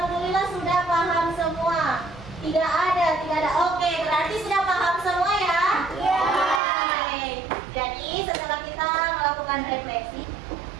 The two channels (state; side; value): drops out; left; at 6.6 s